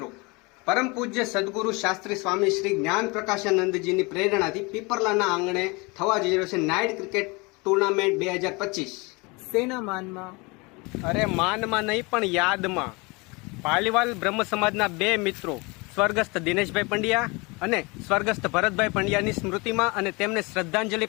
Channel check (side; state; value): right; quieter; 26.9 dB